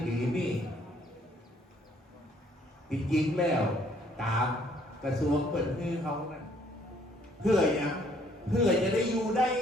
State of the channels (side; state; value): both; normal; correlation 0.64